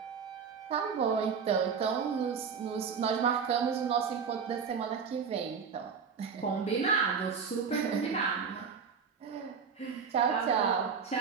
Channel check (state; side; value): quieter; left; 6.1 dB